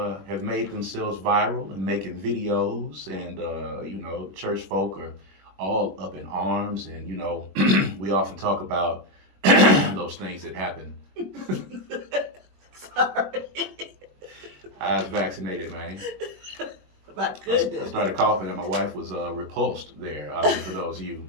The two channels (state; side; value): late; left; 21 ms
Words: have made themselves viral and making videos. And, church folk are all up in arms. And, we often talk about those things that happen. Sorry. I was vaccinated, man. My goodness. I started coughing and my wife was repulsed there. I mean, for those of you